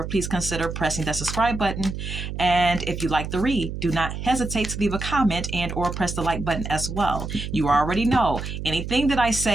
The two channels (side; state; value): right; noise; hum, 6 dB below the sound